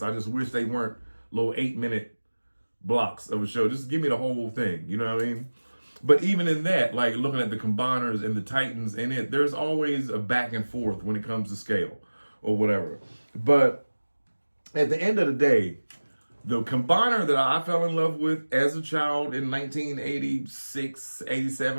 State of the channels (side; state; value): both; inverted; correlation -1.00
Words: I just wish they weren't little 8-minute blocks of a show. Just give me the whole thing. You know what I mean? But even in that, like looking at the Combiners and the Titans in it, there's always a back and forth when it comes to scale or whatever. But at the end of the day, the Combiner that I fell in love with as a child in 1986,